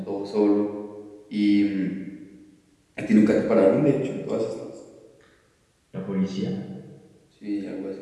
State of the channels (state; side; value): identical; both; correlation 1.00